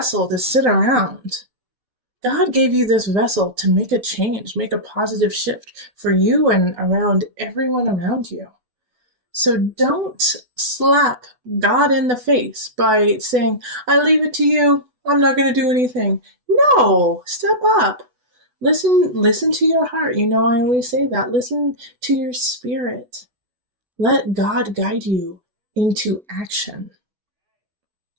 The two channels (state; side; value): late; left; 8.1 ms